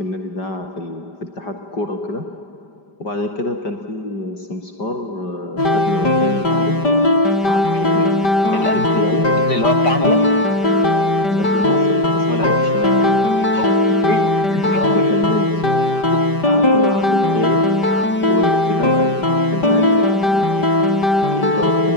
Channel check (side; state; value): right; late; 5.1 ms